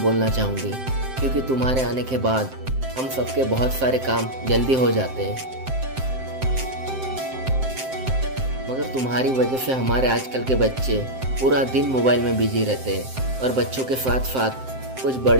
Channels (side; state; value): left; late; 7.7 ms